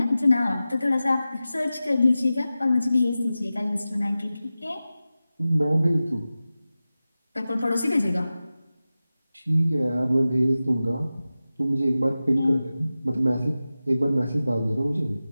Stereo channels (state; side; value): inverted; both; correlation -0.95